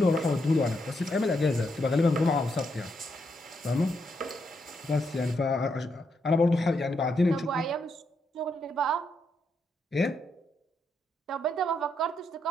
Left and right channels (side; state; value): both; normal; correlation 0.80